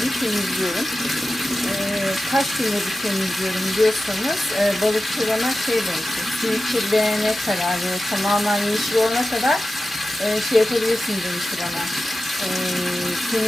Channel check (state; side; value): normal; both; correlation 0.93